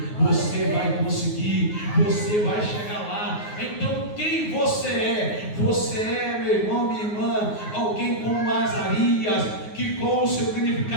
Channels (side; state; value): right; late; 9.5 ms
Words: você vai conseguir, você vai chegar lá. Então quem você é? Você é, meu irmão, minha irmã, alguém como Azarias, que com o seu